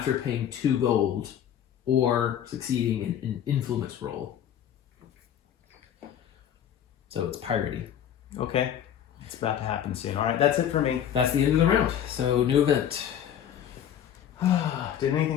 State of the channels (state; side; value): quieter; right; 9.8 dB